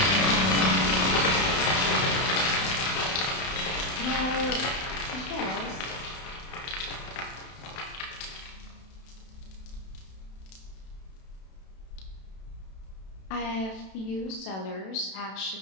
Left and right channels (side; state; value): right; late; 32 ms